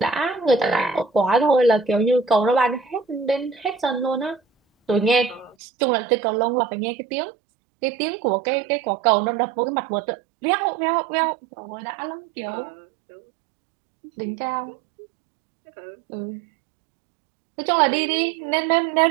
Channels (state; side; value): drops out; left; at 5.6 s